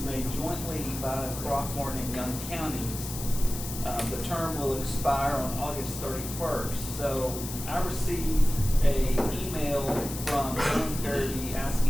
made jointly by Throckmorton and Young counties. The term will expire on August 31st. So I received an email from Helen Farabee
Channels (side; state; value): left; noise; hiss, 9 dB below the sound